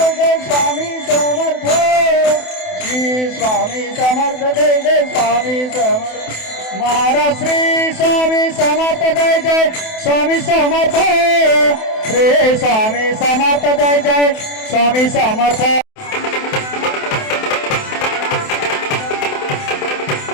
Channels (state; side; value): late; right; 28 ms